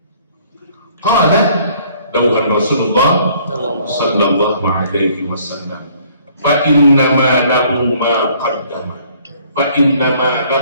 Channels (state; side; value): inverted; both; correlation -0.59